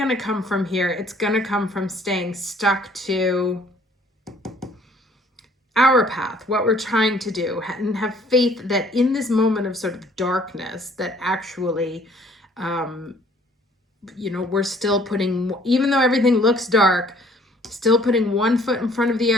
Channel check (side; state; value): both; normal; correlation 0.59